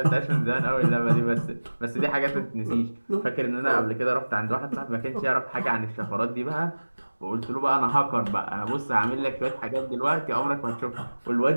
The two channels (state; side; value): inverted; both; correlation -1.00